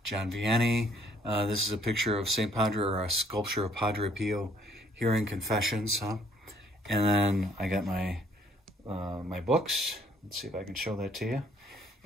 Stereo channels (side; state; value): both; normal; correlation 0.63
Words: John Vianney. This is a picture of St. Padre, or a sculpture of Padre Pio hearing confessions. And then I got my my books. Let's see if I can show that to you.